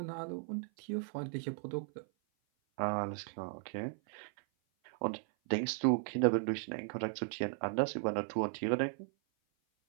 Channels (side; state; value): left; silent; 53 dB below the other